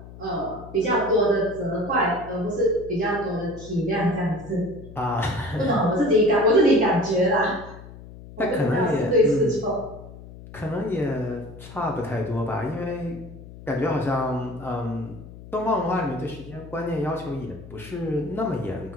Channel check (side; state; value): left; noise; hum, 16 dB below the sound